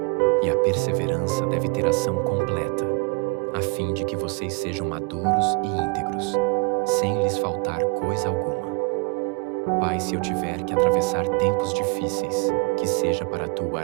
E a perseverança deve ter ação completa, a fim de que vocês sejam maduros e íntegros, sem lhes faltar coisa alguma. Pai, se eu tiver que atravessar tempos difíceis, que seja para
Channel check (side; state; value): left; quieter; 30.8 dB